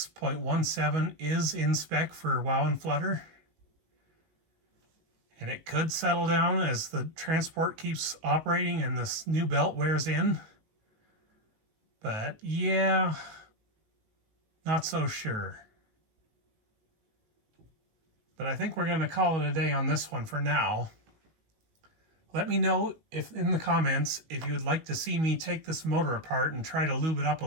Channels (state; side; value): late; left; 19 ms